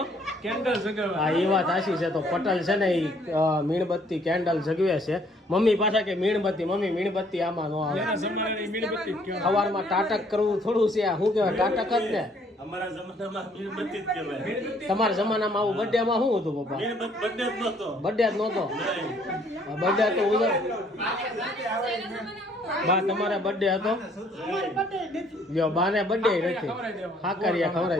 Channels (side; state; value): both; normal; correlation 0.63